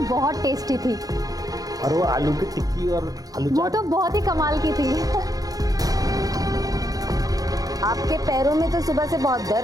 बहुत टेस्टी थी। और वो आलू की टिक्की और आलू वो तो बहुत ही कमाल की थी। आपके पैरों में तो सुबह से बहुत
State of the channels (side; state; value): left; late; 0.18 ms